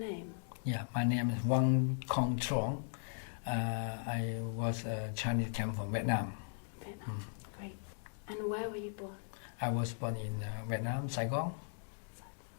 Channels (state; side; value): silent; right; digital silence